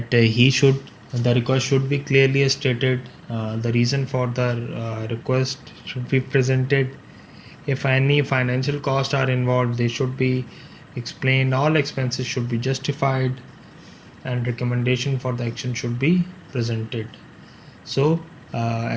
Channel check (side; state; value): both; identical; correlation 1.00